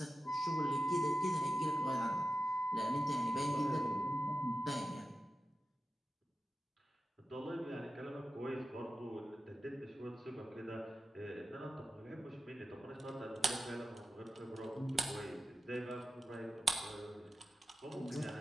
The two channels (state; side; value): normal; both; correlation 0.91